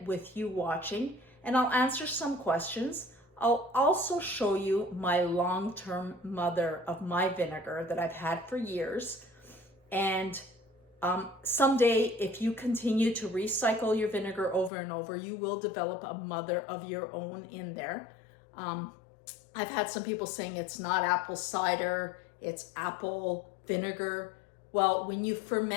with you watching, and I'll answer some questions. I'll also show you my long-term mother of my vinegar that I've had for years. And someday, if you continue to recycle your vinegar over and over, you will develop a mother of your own in there. I've had some people saying it's not apple cider, it's apple vinegar. Well, when you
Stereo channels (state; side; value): drops out; right; at 14.7 s